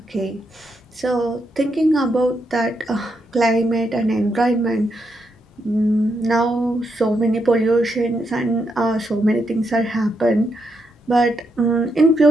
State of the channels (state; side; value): normal; both; correlation 0.81